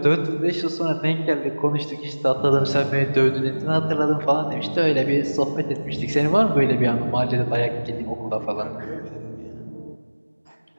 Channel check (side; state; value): both; inverted; correlation -1.00